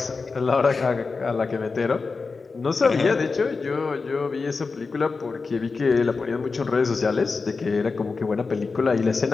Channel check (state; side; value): quieter; right; 4.4 dB